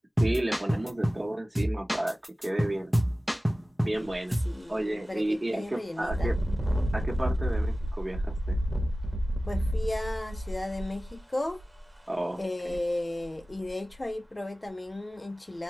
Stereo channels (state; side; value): normal; both; correlation 0.96